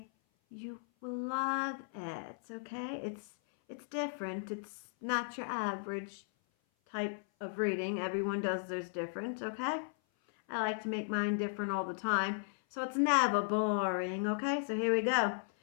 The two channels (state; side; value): silent; right; 54 dB below the other